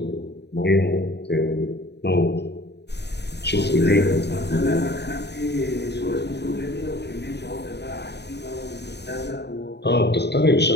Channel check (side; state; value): right; late; 0.49 ms